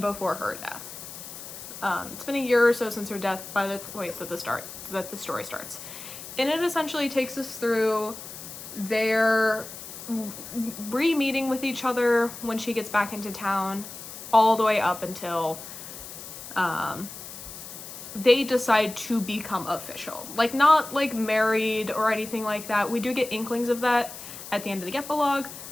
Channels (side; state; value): left; noise; hiss, 12 dB below the sound